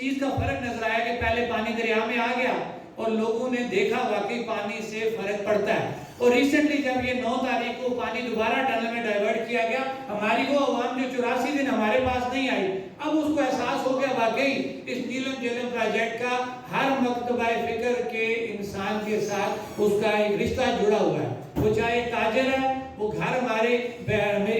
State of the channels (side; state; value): both; identical; correlation 1.00